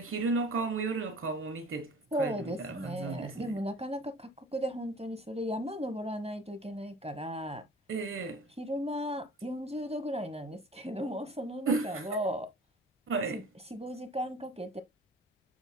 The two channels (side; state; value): both; normal; correlation 0.46